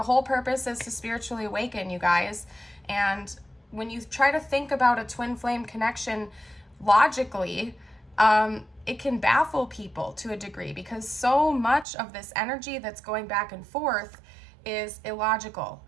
whole purpose is to spiritually awaken, you guys. And when you try to think about a twin flame connection logically, it can baffle people to a degree, because so much of this energy that's going back and forth is illogical,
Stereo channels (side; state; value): left; drops out; at 11.9 s